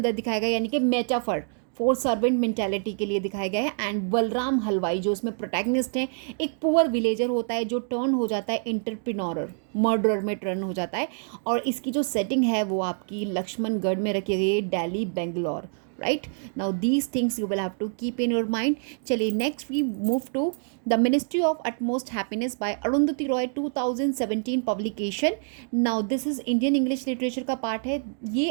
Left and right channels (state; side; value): silent; left; 58 dB below the other